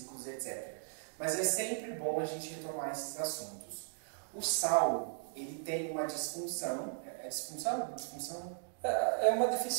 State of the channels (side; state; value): left; silent; digital silence